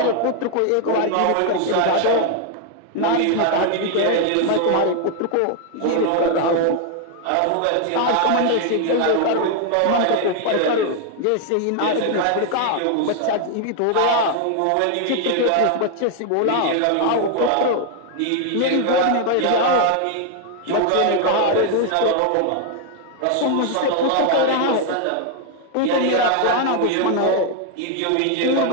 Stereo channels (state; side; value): different; both; correlation 0.00